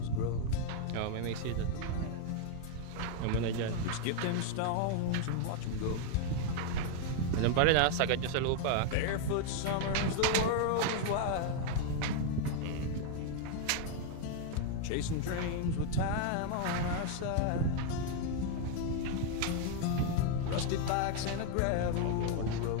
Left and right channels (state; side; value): different; both; correlation 0.00